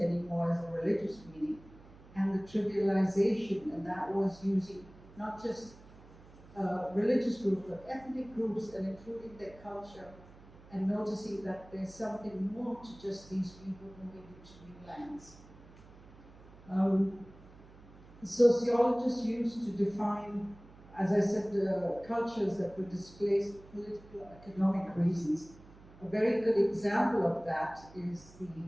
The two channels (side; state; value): right; noise; hum, 21 dB below the sound